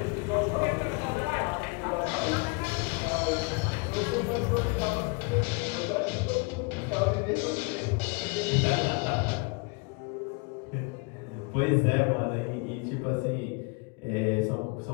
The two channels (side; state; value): right; quieter; 30.8 dB